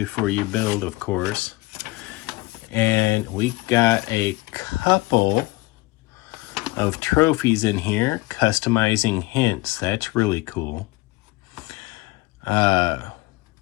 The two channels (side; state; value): right; quieter; 21.4 dB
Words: you build, of course. And we got a couple of trophies in here, customizing hints. That's really cool.